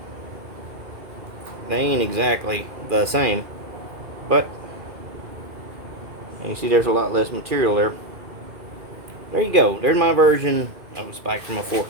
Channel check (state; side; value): late; left; 2.4 ms